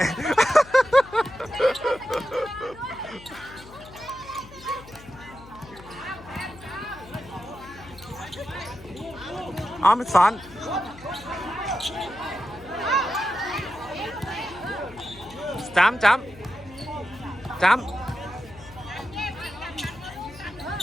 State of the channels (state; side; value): noise; left; hum, 19 dB below the sound